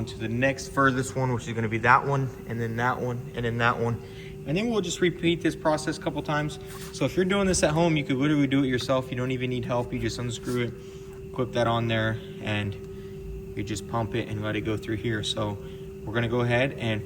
to the next furthest one, which is gonna be that one, and then that one, and then that one. And then we'll just repeat this process a couple times. So if you're doing this at home, you could literally do it yourself. You don't even need help, you just unscrew it, clip that on there, and you just pump it and let it go through here. So we're gonna go ahead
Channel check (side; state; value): both; identical; correlation 1.00